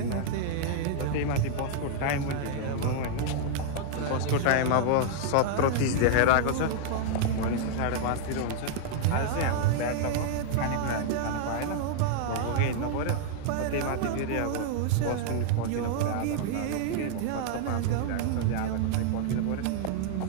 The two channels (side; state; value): both; different; correlation -0.01